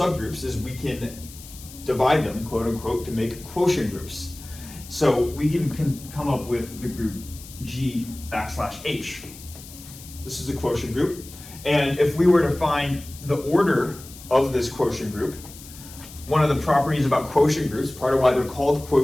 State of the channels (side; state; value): left; noise; hiss, 17 dB below the sound